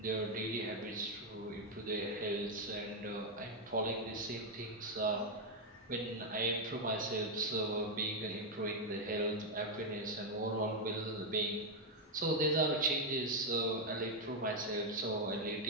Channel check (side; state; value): both; normal; correlation 0.02